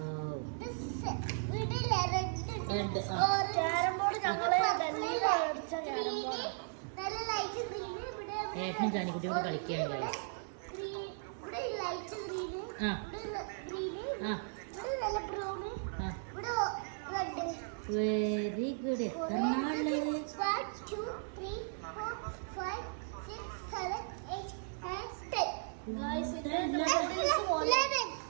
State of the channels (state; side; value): silent; left; 54 dB below the other